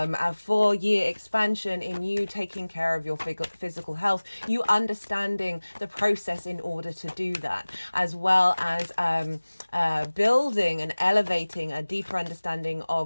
4-year expansion in you taking care of your physical health, you understanding the process in order to do that, as well as building and elevating a deeper understanding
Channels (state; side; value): inverted; both; correlation -1.00